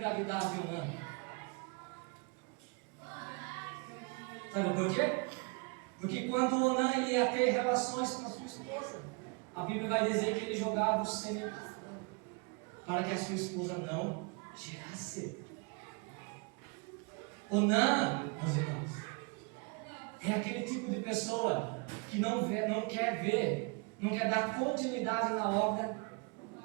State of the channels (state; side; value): quieter; left; 31.8 dB